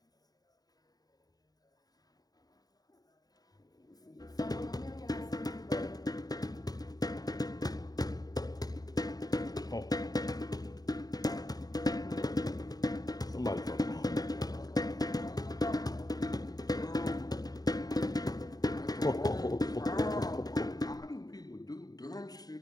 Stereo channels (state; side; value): late; right; 0.18 ms